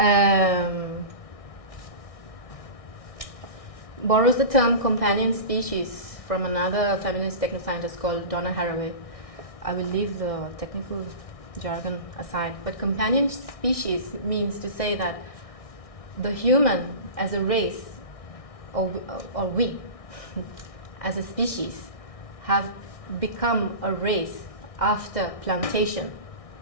Borrows the term companion species from another feminist technoscientist called Donna Haraway. I will leave the technical jargon aside, but companion species means to say that the human as a race, or we as a species, have become a race after plantation.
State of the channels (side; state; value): right; late; 1.6 ms